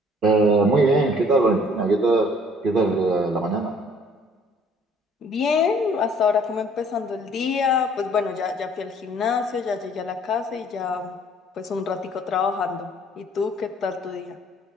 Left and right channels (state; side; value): normal; both; correlation 0.57